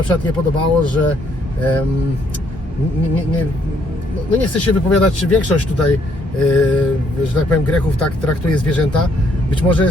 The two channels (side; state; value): both; normal; correlation 0.69